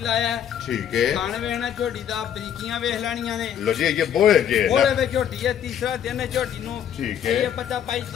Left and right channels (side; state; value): right; quieter; 9.4 dB